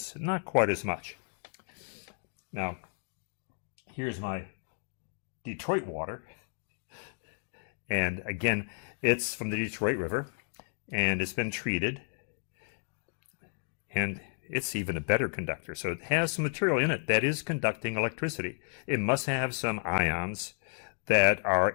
Not quite as much. Now, here's my Detroit water. And again, it's from the Detroit River. And it's been treated, and it's even a better conductor. So it has some material in it that is conducting electricity. It must have some ions that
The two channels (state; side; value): silent; right; digital silence